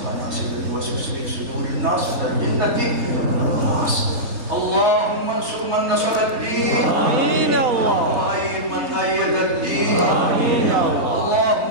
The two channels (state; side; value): late; left; 3.3 ms